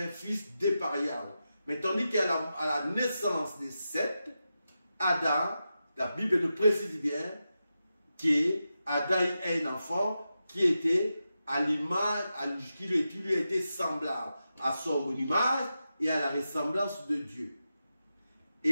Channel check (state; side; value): inverted; both; correlation -0.90